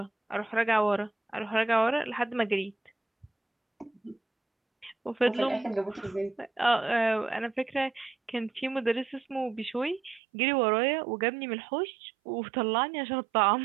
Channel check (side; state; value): left; drops out; at 10.2 s